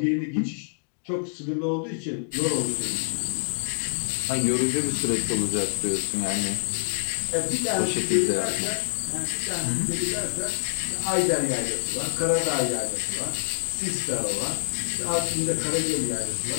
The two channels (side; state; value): right; silent; digital silence